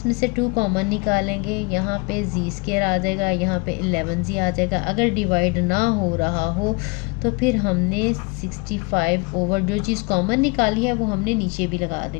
से 2 कॉमन निकालेंगे, यहाँ पे z स्क्वायर आ जाएगा, यहाँ पे 11z आ जाएगा। अगर डिवाइड ना हो रहा हो तो फिर हमने 65 ओवर जो चीज़ कॉमन निकाली है वो हमने नीचे भी लगा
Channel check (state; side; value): quieter; right; 29.3 dB